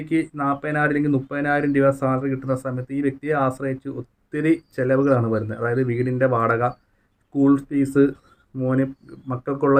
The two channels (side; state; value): both; identical; correlation 1.00